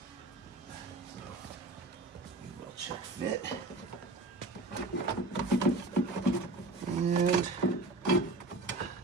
So, we'll check fit. And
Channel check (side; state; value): left; quieter; 3.0 dB